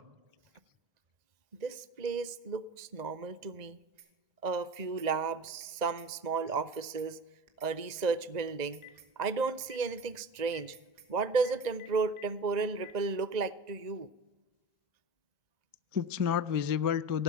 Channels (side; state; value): left; late; 1.9 ms